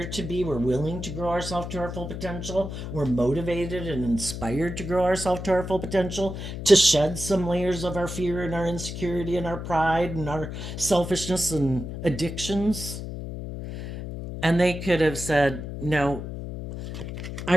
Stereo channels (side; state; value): left; noise; hum, 7 dB below the sound